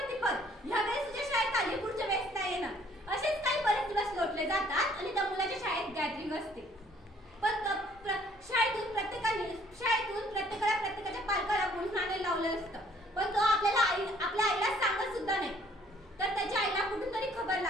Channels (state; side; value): normal; both; correlation 0.60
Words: पण ह्या वेळेस तुझ्या शाळेत आली, पुढच्या वेळेस नाही येणार. असेच काही बरेच दिवस लोटले जातात आणि त्या मुलाच्या शाळेत गॅदरिंग असते. पण शाळेतून प्रत्येकाला प्रत्येकाच्या पालकाला बोलून आणायला लावलं असतं. पण तो आपल्या आईला सांगत सुद्धा नाही. तर त्याच्या आईला कुठून तरी खबर